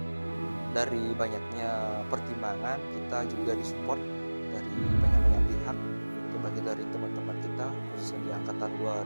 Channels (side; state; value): both; inverted; correlation -1.00